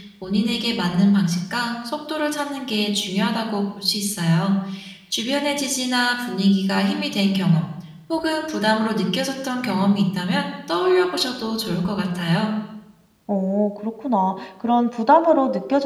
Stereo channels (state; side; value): identical; both; correlation 1.00